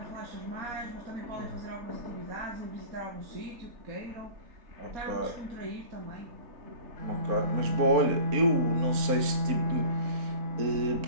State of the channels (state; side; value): late; left; 4.3 ms